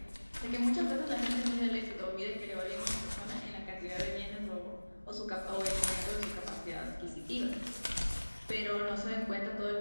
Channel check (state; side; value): inverted; both; correlation -1.00